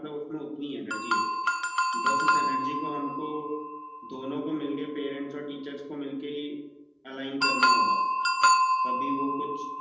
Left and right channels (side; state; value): both; identical; correlation 1.00